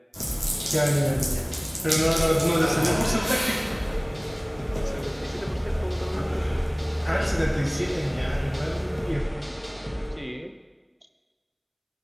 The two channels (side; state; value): both; identical; correlation 1.00